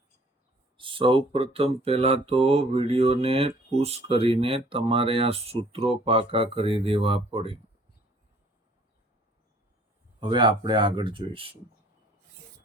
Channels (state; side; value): normal; both; correlation 0.56